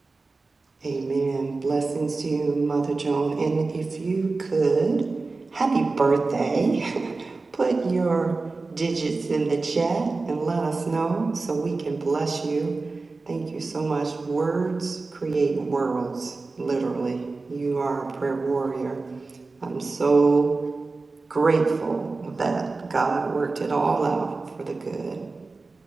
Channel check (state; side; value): quieter; left; 3.7 dB